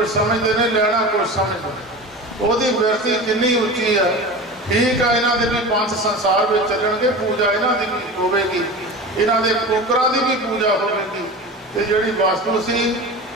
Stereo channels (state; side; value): normal; both; correlation 0.31